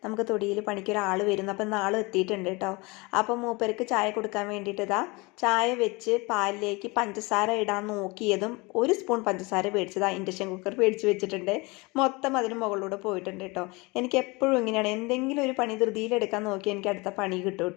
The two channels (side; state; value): right; quieter; 25.6 dB